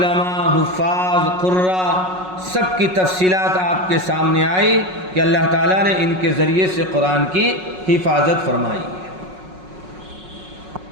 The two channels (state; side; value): late; left; 5.4 ms